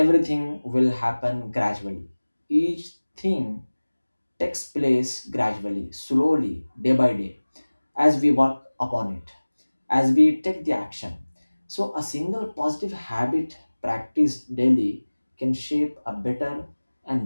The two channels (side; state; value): both; inverted; correlation -1.00